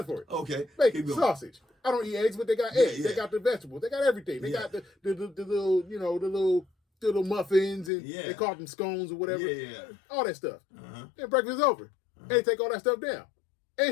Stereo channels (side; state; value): right; drops out; at 7.9 s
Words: for it. Okay. Bacon, sausage, I don't eat eggs, but they got eggs. Yeah. They got the vegetables. They got everything. They got the little, the little muffins, and they call them scones or whatever. Yeah. All that stuff. Then breakfast is over. They take all that stuff down.